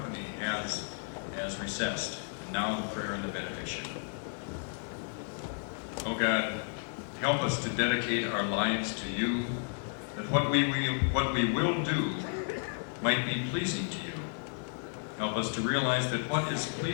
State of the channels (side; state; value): right; silent; 56 dB below the other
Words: has recessed. And now the prayer and the benediction. Oh God, help us to dedicate our lives to you, that what we will do might be pleasing to you. Help us to realize that what is